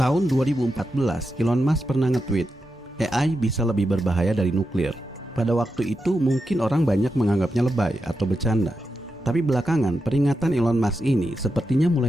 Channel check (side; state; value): both; normal; correlation 0.88